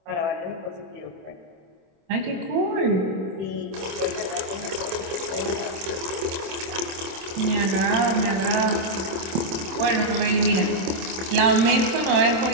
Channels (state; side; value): late; left; 26 ms